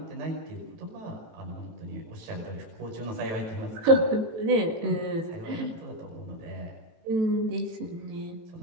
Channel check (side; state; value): left; late; 18 ms